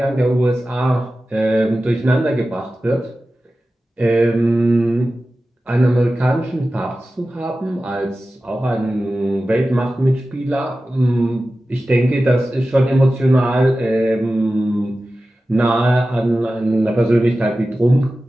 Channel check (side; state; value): both; normal; correlation 0.94